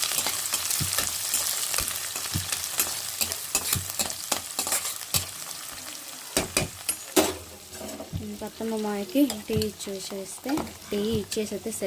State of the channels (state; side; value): identical; both; correlation 1.00